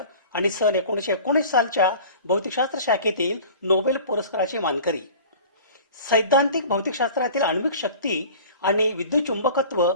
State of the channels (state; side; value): inverted; both; correlation -0.42